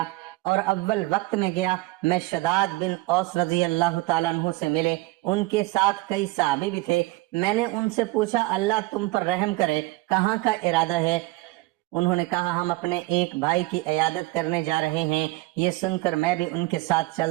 اور اول وقت میں گیا، میں شداد بن اوس رضی اللہ تعالیٰ عنہ سے ملے۔ ان کے ساتھ کئی صحابی بھی تھے۔ میں نے ان سے پوچھا، اللہ تم پر رحم کرے، کہاں کا ارادہ ہے؟ انہوں نے کہا، ہم اپنے ایک بھائی کی عیادت کرنے جا رہے ہیں۔ یہ سن کر میں بھی ان کے ساتھ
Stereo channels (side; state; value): left; quieter; 20.5 dB